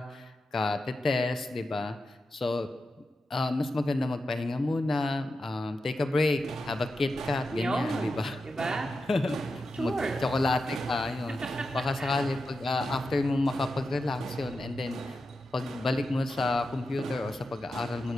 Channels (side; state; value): both; normal; correlation 0.89